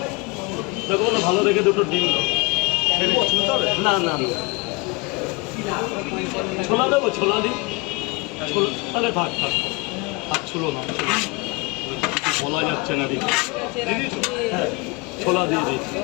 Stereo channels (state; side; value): quieter; right; 26.4 dB